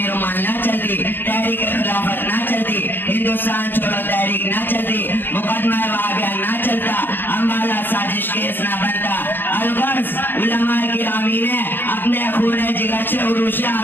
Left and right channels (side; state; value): right; late; 0.095 ms